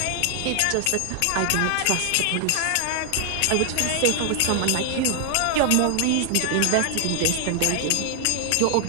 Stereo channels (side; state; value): both; different; correlation 0.00